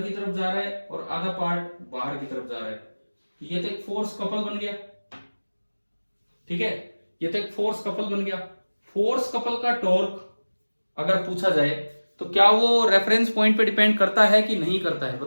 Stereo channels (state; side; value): inverted; both; correlation -1.00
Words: की तरफ जा रहा है और आधा पार्ट बाहर की तरफ जा रहा है, तो ये तो एक फोर्स कपल बन गया, ठीक है, ये तो एक फोर्स कपल बन गया। फोर्स कपल का टॉर्क अगर पूछा जाए तो क्या वो रेफरेंस पॉइंट पे डिपेंड करता है कि नहीं करता है,